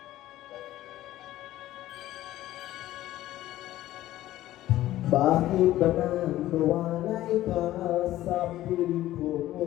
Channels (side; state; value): right; quieter; 14.7 dB